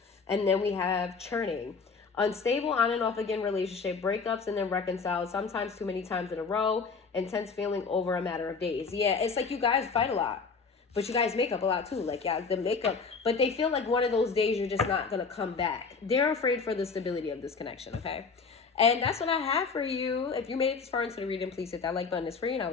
And then we have churning, unstable on and off again relationship, breakups and then reconcile, sometimes too many times in a row, intense feeling over a matter of days. Yeah, it's like you guys fight a lot, but you guys make up a lot too. Like yeah, the makeup, but they feel like one of those days you're just not gonna come back. They're afraid for the stability of this connection. Okay. And that's what I have for you. If you made it this far into the reading, please hit that like button. It's free, and I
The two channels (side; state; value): right; quieter; 5.0 dB